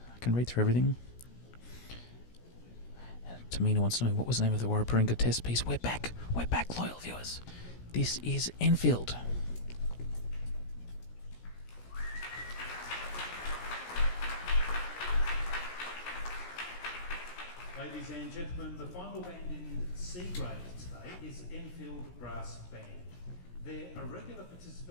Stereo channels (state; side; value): late; right; 17 ms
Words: can read through everything. Tamina wants to know, what was the name of the Warraparinga test piece? We're back, loyal viewers. This is Enfield. Ladies and gentlemen, the final band in C grade today is Enfield Brass Band. They are regular